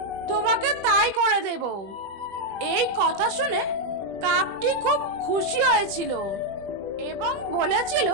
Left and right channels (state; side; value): late; left; 20 ms